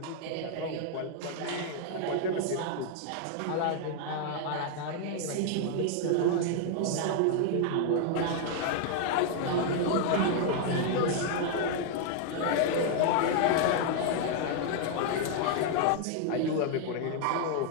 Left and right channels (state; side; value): different; both; correlation 0.00